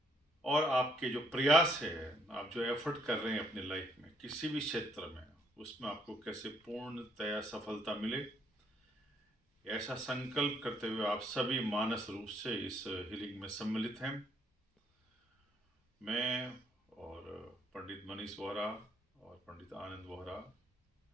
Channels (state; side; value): normal; both; correlation 0.69